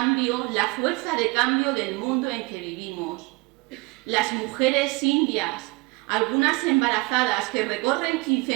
la fuerza de cambio del mundo en que vivimos. Las mujeres indias, algunas embarazadas, que recorren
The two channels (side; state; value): left; quieter; 25.8 dB